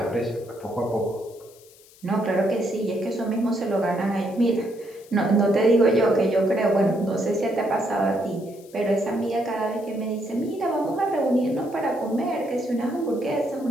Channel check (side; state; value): left; noise; hiss, 25 dB below the sound